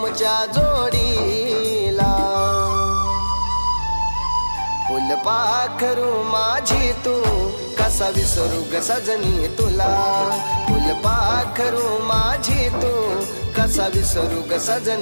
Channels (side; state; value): both; inverted; correlation -1.00